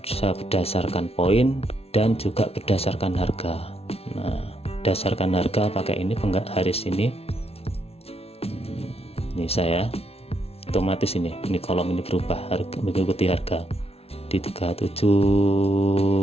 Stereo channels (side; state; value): right; late; 0.29 ms